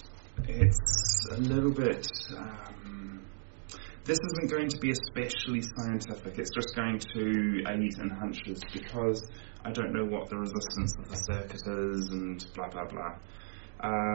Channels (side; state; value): left; silent; digital silence